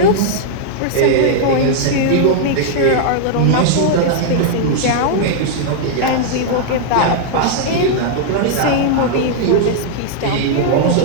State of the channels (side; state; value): both; different; correlation -0.01